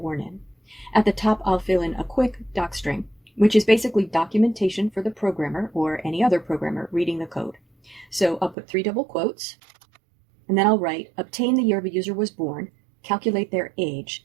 in. At the top, I'll fill in a quick docstring, which is basically documentation for the programmer or any other programmer reading the code. So I'll put 3 double quotes, and then I'll write, obtain the year the user was born, calculate their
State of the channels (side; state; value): left; drops out; at 8.6 s